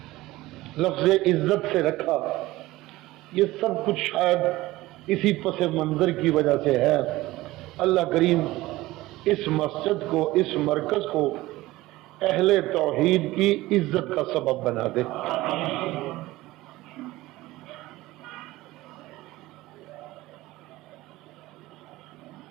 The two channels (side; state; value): left; quieter; 18.2 dB